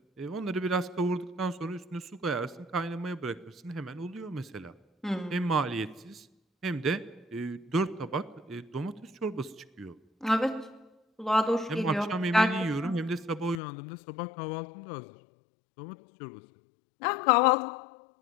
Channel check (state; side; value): drops out; right; at 13.6 s